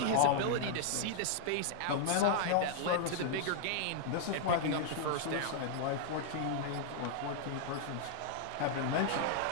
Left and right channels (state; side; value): different; both; correlation 0.00